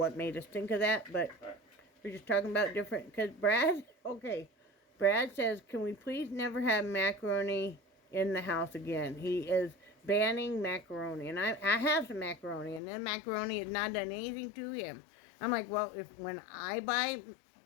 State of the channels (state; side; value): drops out; right; at 12.8 s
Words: made us think of that, but we're just talking about different, because Brad says, can we please never have macaroni in the house again? He is banning macaroni, and I have some macaroni, and then macaroni has not done anything to him. I'm like, well, when I buy